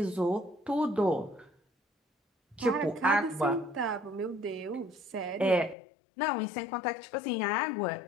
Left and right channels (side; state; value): right; drops out; at 5.8 s